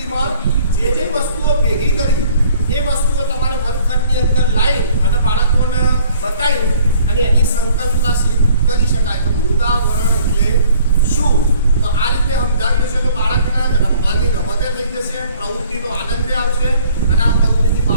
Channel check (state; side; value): inverted; both; correlation -0.55